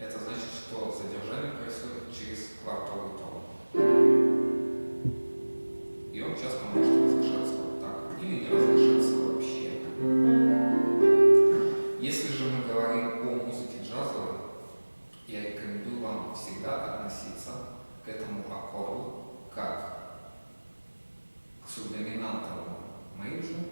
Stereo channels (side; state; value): both; inverted; correlation -1.00